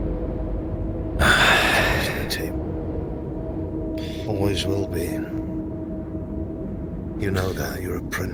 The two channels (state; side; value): identical; both; correlation 1.00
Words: Red tape. Always will be. You know that, you're a